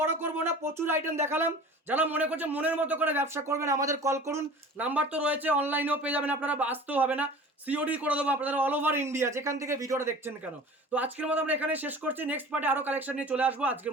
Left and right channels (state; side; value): normal; both; correlation 0.41